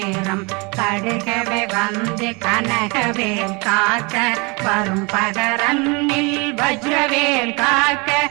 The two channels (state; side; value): quieter; left; 28.8 dB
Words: கடுகவே வந்து கனகவேல் காக்க வரும் பகரன்னில் வஜ்ரவேல் காக்க